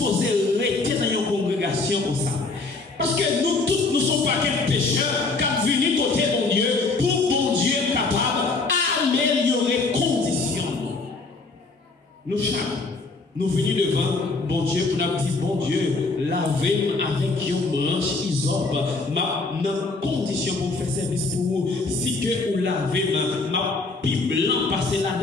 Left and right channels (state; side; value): quieter; right; 3.8 dB